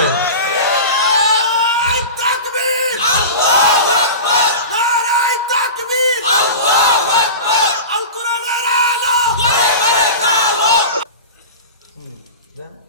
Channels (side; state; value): both; inverted; correlation -0.30